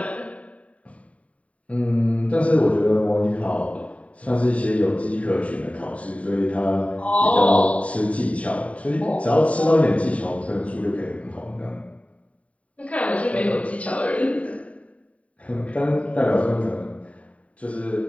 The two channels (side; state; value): right; late; 0.066 ms